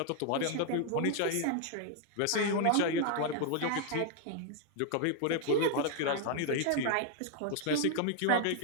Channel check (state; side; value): different; both; correlation 0.00